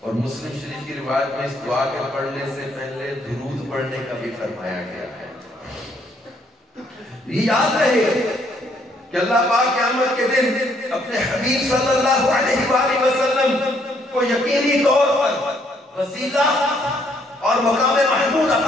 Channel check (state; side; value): normal; both; correlation 0.69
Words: مسلم شریف کی روایت میں اس دعا کے پڑھنے سے پہلے درود پڑھنے کا بھی فرمایا گیا ہے. یہ یاد رہے کہ اللہ پاک قیامت کے دن اپنے حبیب صلی اللہ علیہ وآلہ وسلم کو یقینی طور پر وسیلہ اور مقام محمود